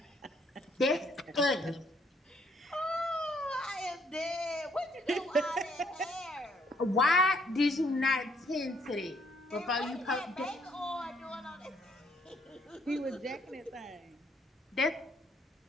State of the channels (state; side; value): normal; both; correlation 0.67